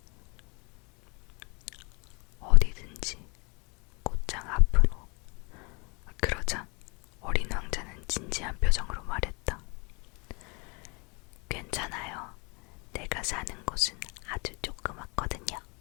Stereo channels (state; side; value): quieter; right; 30.6 dB